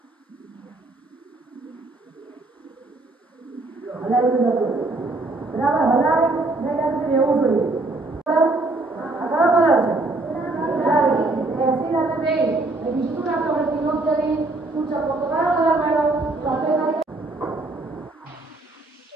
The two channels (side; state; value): left; quieter; 3.0 dB